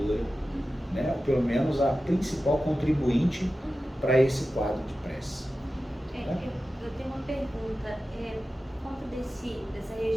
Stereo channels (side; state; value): both; normal; correlation 0.94